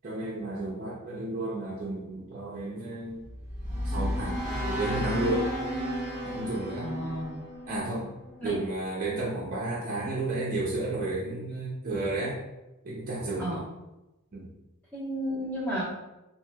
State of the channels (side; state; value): both; normal; correlation 0.44